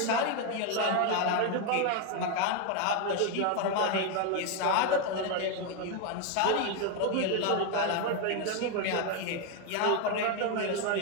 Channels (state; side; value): different; both; correlation 0.01